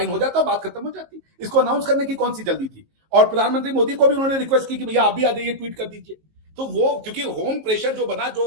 हो जाता, बात खत्म हो जाती। इसको अनाउंस करने की कौन सी जल्दी थी? और प्रधानमंत्री मोदी को भी उन्होंने रिक्वेस्ट की कि भैया आप भी आ जाइए, ट्वीट कर दीजिए। तो वो क्योंकि होम प्रेशर जो बना,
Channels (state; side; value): late; left; 19 ms